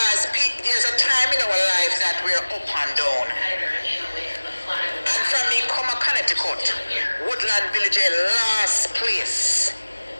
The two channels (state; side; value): inverted; both; correlation -1.00